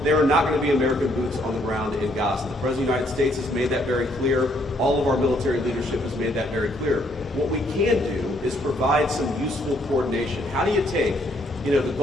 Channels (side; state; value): both; normal; correlation 0.69